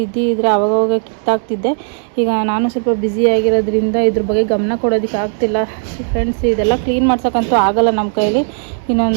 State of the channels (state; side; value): silent; left; digital silence